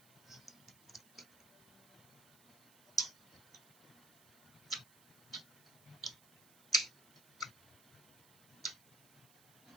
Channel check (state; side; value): noise; right; hiss, 23 dB below the sound